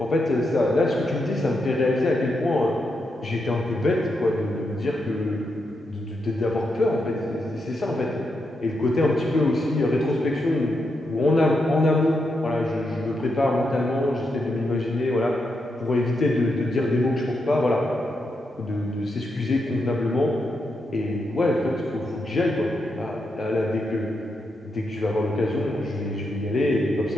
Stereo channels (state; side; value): normal; both; correlation 0.83